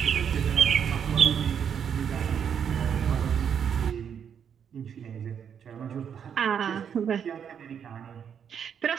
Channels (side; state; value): left; quieter; 7.9 dB